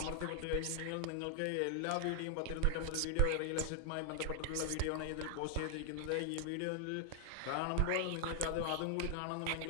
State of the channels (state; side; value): different; both; correlation 0.00